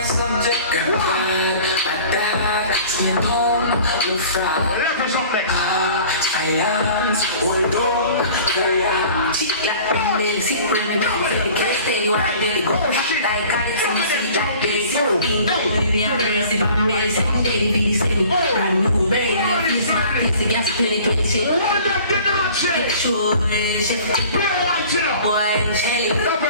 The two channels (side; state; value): both; inverted; correlation -0.47